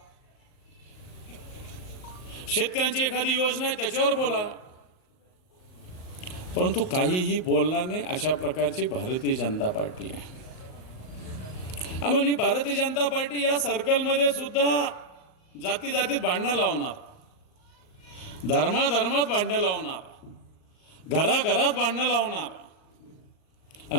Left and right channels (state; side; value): late; right; 38 ms